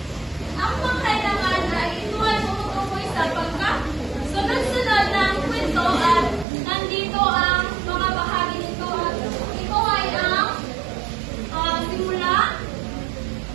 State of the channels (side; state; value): left; drops out; at 6.5 s